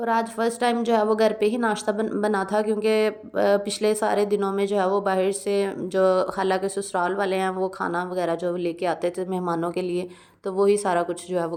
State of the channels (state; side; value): identical; both; correlation 1.00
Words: आज फर्स्ट टाइम जो है वो घर पे ही नाश्ता बना था, क्योंकि पिछले सारे दिनों में जो है वो बाहर से जो खाला के ससुराल वाले हैं वो खाना वगैरह जो लेके आते थे मेहमानों के लिए, तो वही सारा कुछ जो है वो